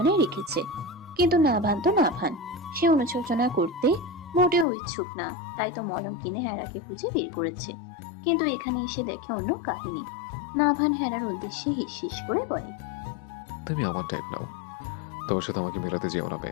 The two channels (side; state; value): right; drops out; at 4.7 s